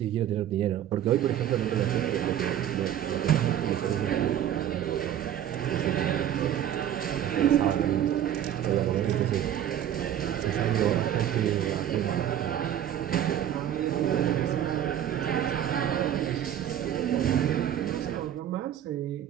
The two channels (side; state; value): left; quieter; 10.6 dB